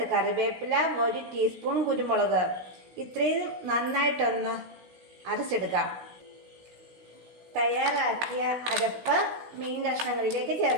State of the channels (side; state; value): left; late; 16 ms